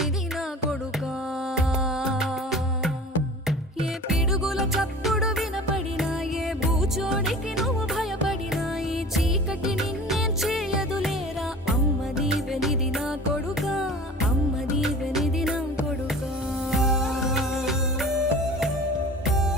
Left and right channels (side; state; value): both; normal; correlation 0.40